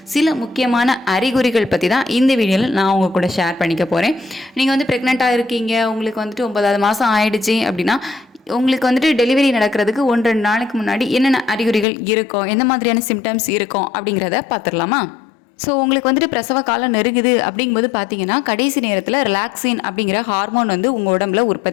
சில முக்கியமான அறிகுறிகள் பற்றி தான் இந்த வீடியோவில் நான் உங்கள் கூட ஷேர் பண்ணிக்க போகிறேன். நீங்கள் வந்து ப்ரெக்னெண்ட்டாக இருக்கீங்க, உங்களுக்கு வந்துட்டு 9வது மாதம் ஆயிடுச்சு அப்படின்னா உங்களுக்கு வந்துட்டு டெலிவரி நடக்கிறதுக்கு 1-2 நாளைக்கு முன்னாடி என்னென்ன அறிகுறிகள் இருக்கும், எந்த மாதிரியான சிம்டம்ஸ் இருக்கும் அப்படிங்கிறத பார்த்துடலாமா? ஸோ உங்களுக்கு வந்துட்டு பிரசவ காலம் நெருங்குது அப்படிங்கும்போது பார்த்தீங்கன்னா கடைசி நேரத்தில் ரிலாக்ஸின் அப்படிங்கிற ஹார்மோன் வந்து உங்கள் உடம்புல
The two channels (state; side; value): drops out; right; at 11.9 s